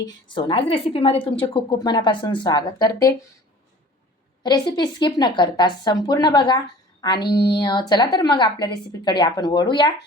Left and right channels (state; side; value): normal; both; correlation 0.46